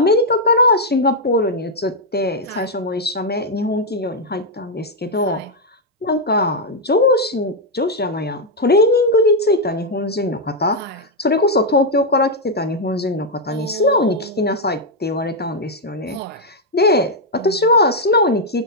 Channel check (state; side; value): normal; both; correlation -0.01